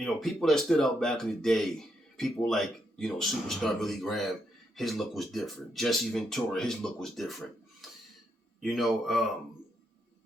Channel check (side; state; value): both; normal; correlation 0.79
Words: People that stood out back in the day, people like, Superstar Billy Graham, his look was different. Jesse Ventura, his look was different.